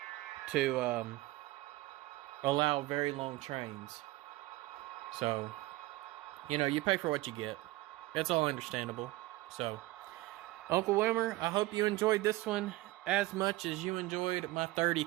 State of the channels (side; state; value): left; quieter; 18.8 dB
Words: to allow very long trains. So, you know, you pay for what you get. That's all understandable. So, Uncle Wilmer, I hope you enjoyed this one as much as you enjoyed my 30